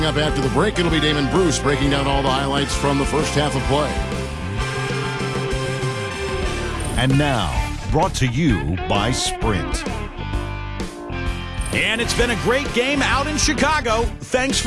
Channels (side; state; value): both; identical; correlation 1.00